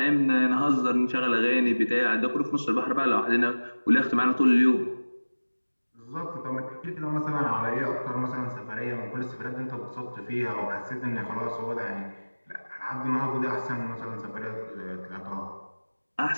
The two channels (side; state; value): both; inverted; correlation -1.00